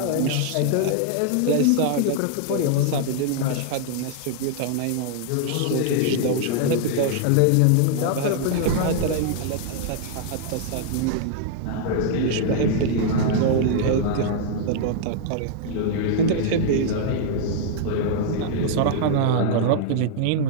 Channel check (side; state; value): both; different; correlation -0.01